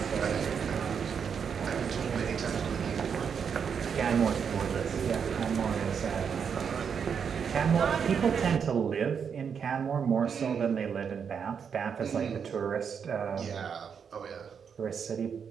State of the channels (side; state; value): left; quieter; 6.9 dB